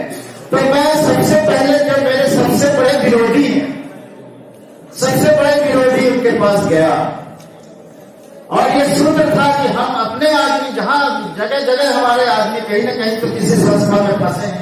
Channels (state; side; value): identical; both; correlation 1.00